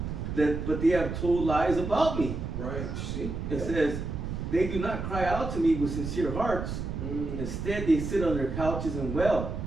but they have told lies about me." Right. See? It says, "They do not cry out to me with sincere hearts. Instead, they sit on their couches and wail.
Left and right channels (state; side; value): noise; right; rumble, 5 dB below the sound